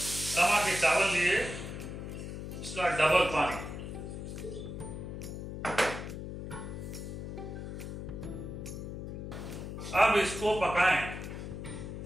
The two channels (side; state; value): left; noise; hum, 7 dB below the sound